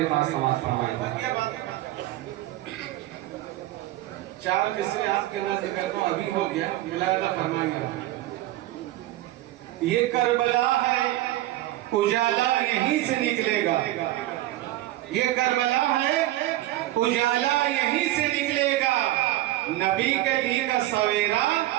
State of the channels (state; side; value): quieter; left; 15.7 dB